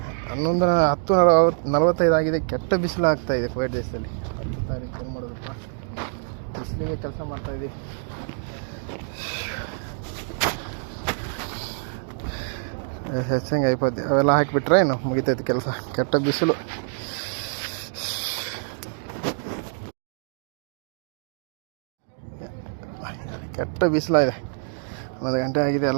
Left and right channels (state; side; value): silent; left; digital silence